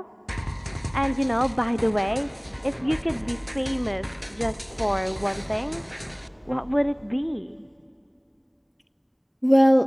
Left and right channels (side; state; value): both; identical; correlation 1.00